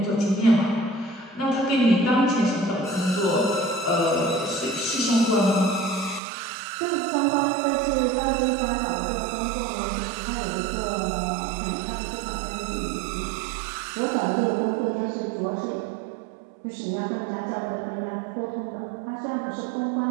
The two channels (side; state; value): left; drops out; at 6.2 s